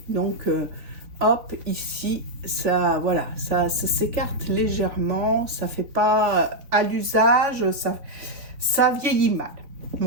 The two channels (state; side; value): late; left; 3.2 ms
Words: donc, hop, ici, ça, voilà, ça s'écarte légèrement. Ça fait pas à l'usage, ça vieillit mal.